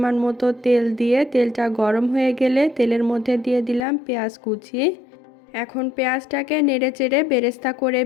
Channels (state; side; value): drops out; right; at 3.8 s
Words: মতো তেল দিয়ে তেলটা গরম হয়ে গেলে তেলের মধ্যে দিয়ে দিলাম পেঁয়াজ কুচি। এখন পেঁয়াজটাকে নেড়েচেড়ে বেরেস্তা করে